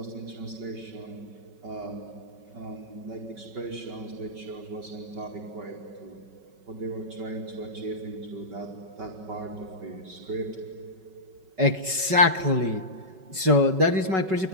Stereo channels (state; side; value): late; left; 5.3 ms